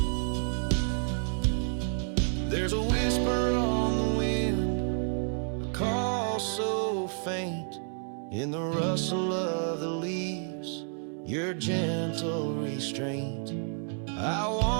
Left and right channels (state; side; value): silent; left; 58 dB below the other